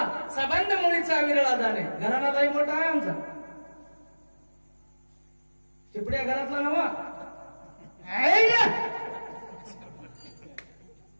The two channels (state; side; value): inverted; both; correlation -1.00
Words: संबंध मुळीचा विरळा जाणे. घराणालाही मोठा आहे आमचा. चिपड्या घरातला नवा.